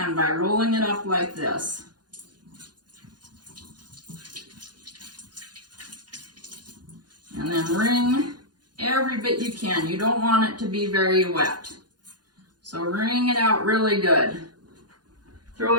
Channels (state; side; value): late; left; 0.70 ms